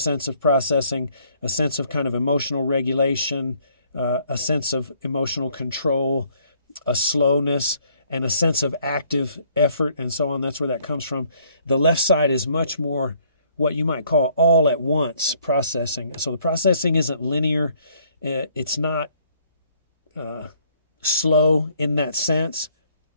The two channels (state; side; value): inverted; both; correlation -0.64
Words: of processing, a sense of kind of emotional regulation, a sense of emotional control, a slowness, and a sense of active effort, and so on. That's where that comes from. The left side is much more what you might call all at once processing. So the processing isn't linear. It's not slow in that sense.